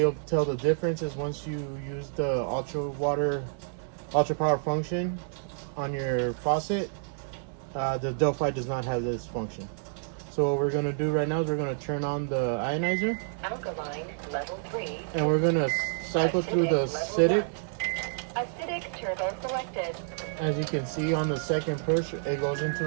tell the difference is once you use the UltraPower function on your faucet, the Delphi does not have this function. So what we're going to do right now is we're going to turn on the ionizer. Alkaline level 3. And we're going to cycle through the acidic. Acidic turbo selected. As you can see on the second push, it goes into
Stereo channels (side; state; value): left; silent; 58 dB below the other